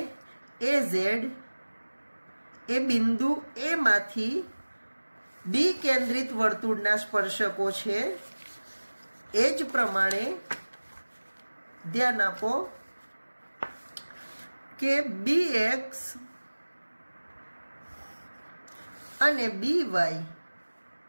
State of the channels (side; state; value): both; inverted; correlation -1.00